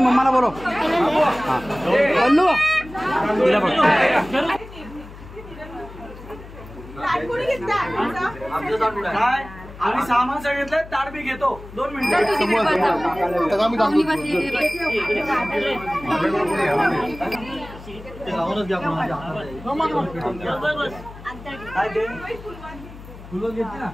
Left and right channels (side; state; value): left; noise; hum, 16 dB below the sound